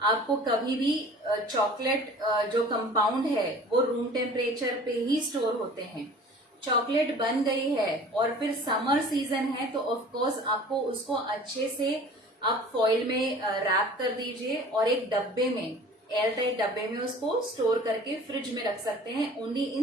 कभी भी चॉकलेट जो कंपाउंड है वो रूम टेम्परेचर पे ही स्टोर होते हैं। चॉकलेट बन गई है और फिर समर सीजन है, तो ऑफ कोर्स आपको उसको अच्छे से आप फॉइल में रैप कर दीजिए और एक डब्बे में, एयर टाइट डब्बे में उसको स्टोर करके फ्रिज में रख सकते हैं। Only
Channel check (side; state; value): both; normal; correlation 0.45